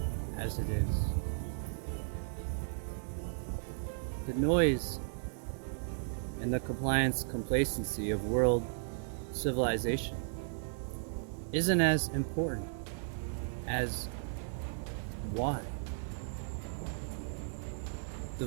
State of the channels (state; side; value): silent; left; digital silence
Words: as it is. The noise and the compliance complacency of world civilization isn't as important as why. The